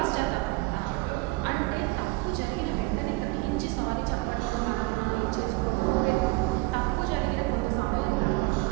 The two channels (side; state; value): left; quieter; 23.4 dB